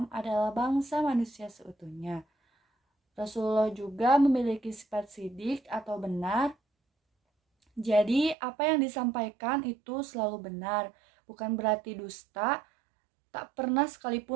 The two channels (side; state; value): left; drops out; at 8.3 s